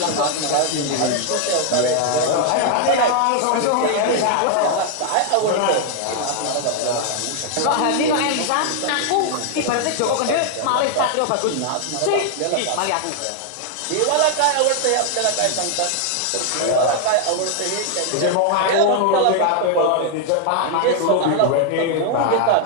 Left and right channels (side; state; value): both; different; correlation 0.00